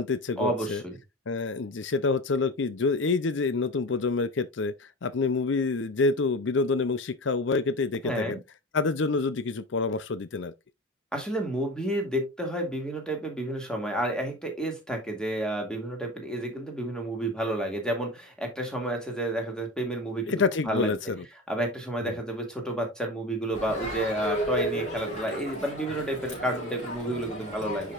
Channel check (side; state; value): both; normal; correlation 0.30